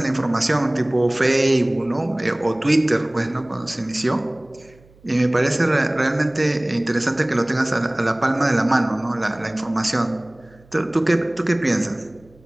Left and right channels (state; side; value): noise; right; hum, 28 dB below the sound